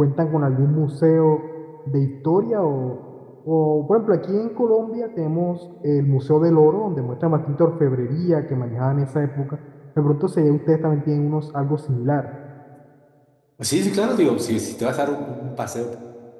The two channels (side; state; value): both; identical; correlation 1.00